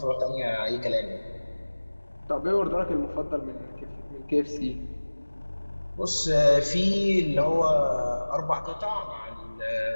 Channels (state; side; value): inverted; both; correlation -1.00